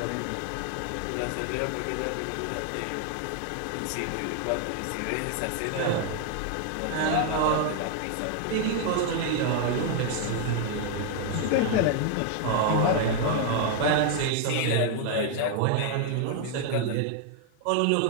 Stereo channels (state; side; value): different; both; correlation 0.00